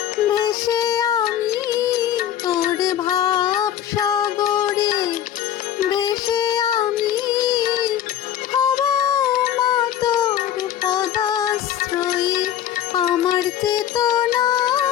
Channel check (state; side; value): quieter; right; 10.8 dB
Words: ভেসে আমি, তোর ভাব সাগরে ভেসে আমি হব মা তোর পদাশ্রয়ী। আমার চেতনা